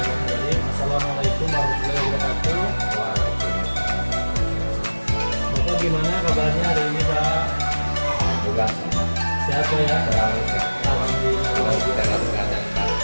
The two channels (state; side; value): inverted; both; correlation -1.00